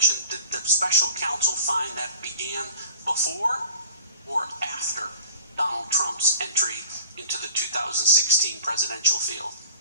did the special counsel find that began before or after Donald Trump's entry into the 2016 presidential field?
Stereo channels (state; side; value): inverted; both; correlation -0.43